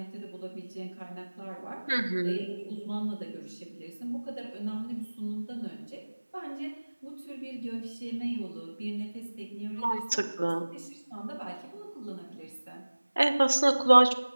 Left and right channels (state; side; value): inverted; both; correlation -1.00